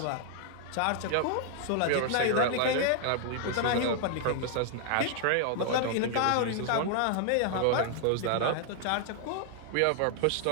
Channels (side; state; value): both; different; correlation 0.00